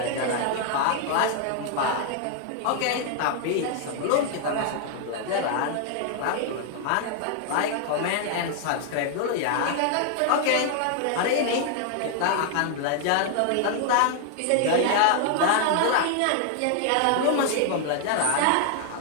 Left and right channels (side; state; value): both; different; correlation 0.00